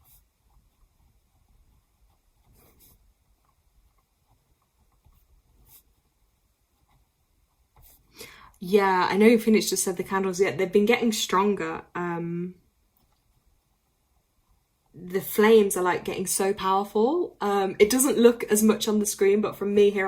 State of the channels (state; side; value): identical; both; correlation 1.00